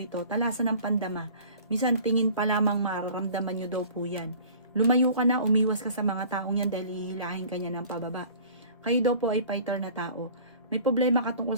talasan ng pandama. Minsan tingin pa lamang mararamdaman nyo daw po yan. Lumayo ka na, umiwas ka sa mga taong yan dahil hihilahin ka niya ng pababa. Kayo daw po ay fighter na tao. May problema ka tungkol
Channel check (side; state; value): both; inverted; correlation -0.47